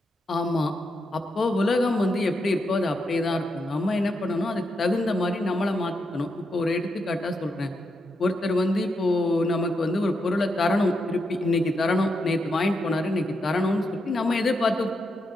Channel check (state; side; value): normal; both; correlation 0.83